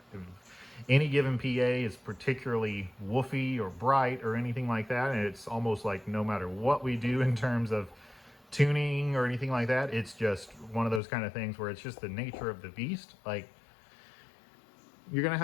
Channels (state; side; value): drops out; right; at 11.0 s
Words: any given PA is particularly woofy or bright or anything like that, and it's almost like no matter what we do in terms of tuning or anything like that, it's just one of those kind of things where it's just the nature of the beast. Like, you're going to